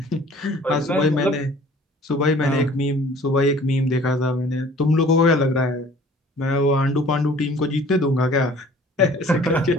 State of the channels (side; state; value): both; normal; correlation 0.51